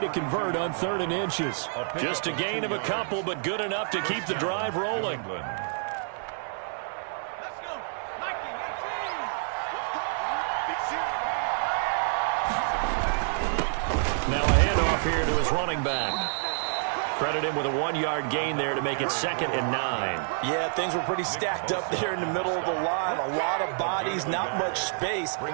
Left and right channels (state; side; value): silent; left; 59 dB below the other